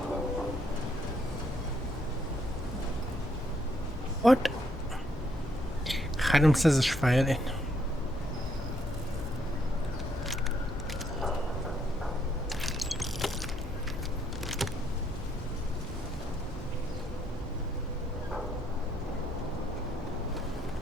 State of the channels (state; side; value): normal; both; correlation 0.72